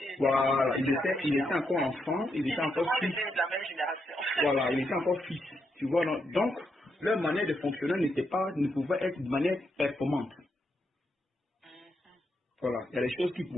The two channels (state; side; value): normal; both; correlation 0.81